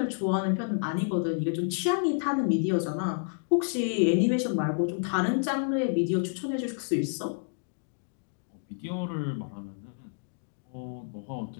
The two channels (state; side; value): silent; right; digital silence